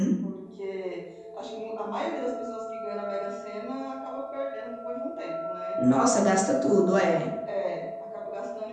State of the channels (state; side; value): identical; both; correlation 1.00